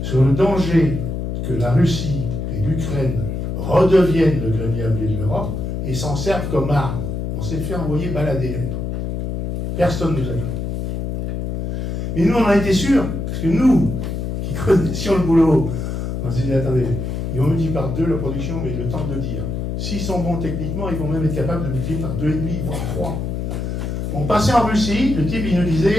sur le danger que la Russie et l'Ukraine redeviennent le grenier à blé de l'Europe et s'en servent comme arme. On s'est fait envoyer balader à l'époque. Personne ne nous a cru. Et nous, on a été sûrs, parce que nous, qui connaissions le boulot, on s'est dit, attendez, ils vont multiplier par 2 la production, mais le temps de le dire. S'ils sont bons techniquement, ils vont même être capables de multiplier par 2,5, voire 3. On passait en Russie, le type, il nous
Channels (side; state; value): left; noise; hum, 3 dB below the sound